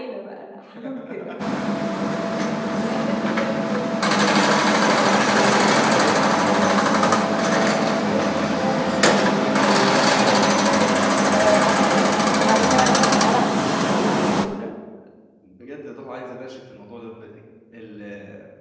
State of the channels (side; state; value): both; identical; correlation 1.00